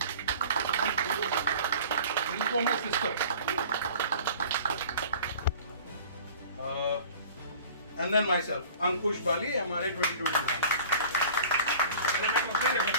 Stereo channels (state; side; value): inverted; both; correlation -0.44